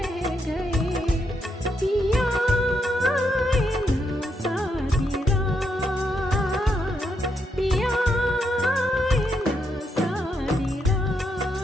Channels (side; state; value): both; normal; correlation 0.80